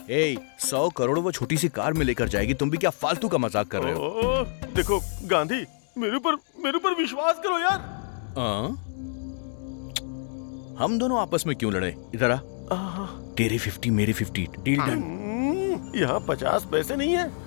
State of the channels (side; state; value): right; silent; 60 dB below the other